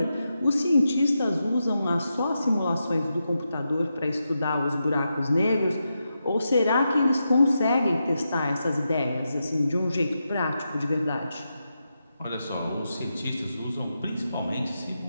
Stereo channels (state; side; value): inverted; both; correlation -0.87